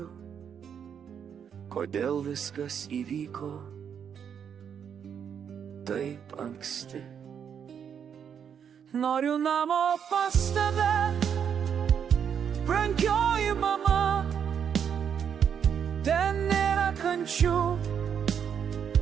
kodėl viskas įvyko taip anksti. Noriu namo pas tave, brangioji mama, ten nėra kančių,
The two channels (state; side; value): quieter; left; 7.9 dB